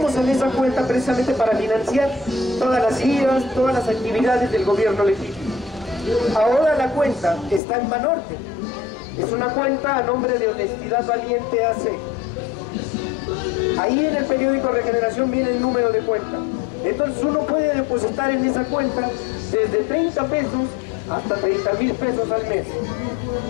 en esa cuenta precisamente para financiar todas las giras, todas las actividades del gobierno legítimo. Ahora la cuenta está en Banorte. Es una cuenta a nombre de Honestidad Valiente AC. Ahí en el periódico Regeneración viene el número de cuenta. Entonces uno puede depositar en esa cuenta desde 30 pesos hasta 30,000 pesos al mes.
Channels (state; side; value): drops out; right; at 7.6 s